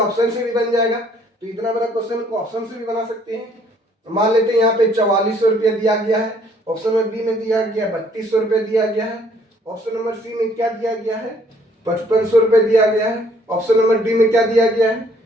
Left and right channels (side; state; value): both; normal; correlation 0.62